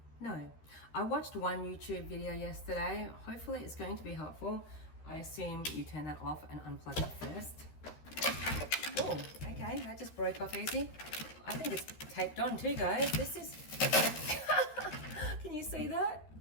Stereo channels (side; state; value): right; late; 13 ms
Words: No. I watched one YouTube video yesterday. Hopefully it's going to be helpful. I assume you turn that off and unplug it first. Oh, okay, that just broke off easy. I think it's taped on too, guys. This is... Can you see that?